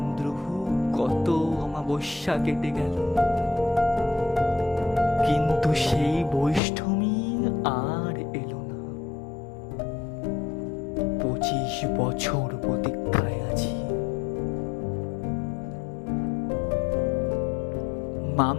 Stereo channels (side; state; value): right; drops out; at 6.6 s